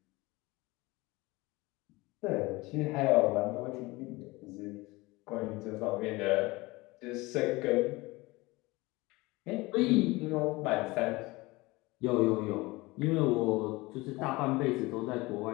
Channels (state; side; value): quieter; right; 22.2 dB